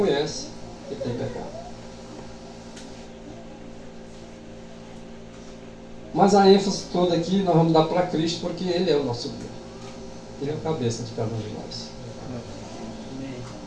que tem pecado. Mas a ênfase toda aqui nós vamos dar para Cristo, porque Ele é o nosso guia. Ele é a cabeça de cada um de nós.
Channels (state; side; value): identical; both; correlation 1.00